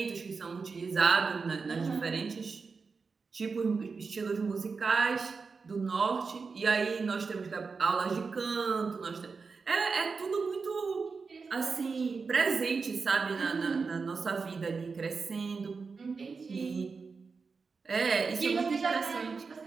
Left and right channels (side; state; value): left; quieter; 4.8 dB